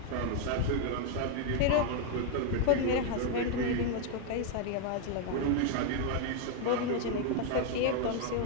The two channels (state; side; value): different; both; correlation 0.00